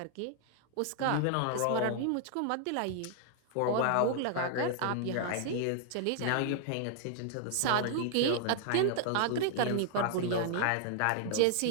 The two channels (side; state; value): both; different; correlation -0.01